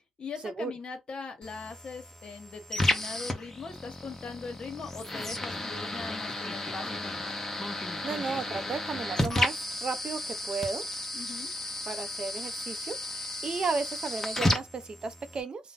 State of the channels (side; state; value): both; normal; correlation 0.81